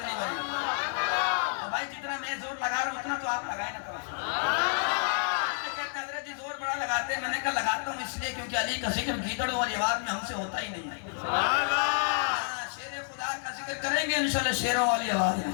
نہیں بنی بھائی، جتنا میں زور لگا رہا ہوں اتنا تو آپ لگائیں نا کبھی۔ کہتے حضرت جی زور بڑا لگاتے ہیں، میں نے کہا لگاتا ہوں اس لیے کیونکہ علی کا ذکر گیدڑوں والی آواز میں ہم سے ہوتا ہی نہیں ہے۔ شیر خدا کا ذکر کریں گے انشاءاللہ شیروں والی آواز میں۔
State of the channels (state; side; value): silent; right; 58 dB below the other